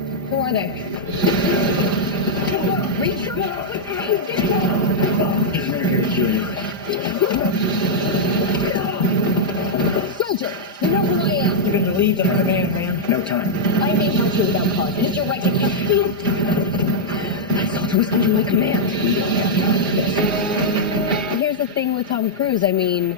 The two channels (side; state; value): both; normal; correlation -0.06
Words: Who are they? Reacher? These men are here to kill you. Soldier, you know who I am. You've been relieved of command, ma'am. No time. I may help you without cause. It is your right to kill. That soldier was under my command. We don't have time for this. Here's the thing with Tom Cruise. I mean,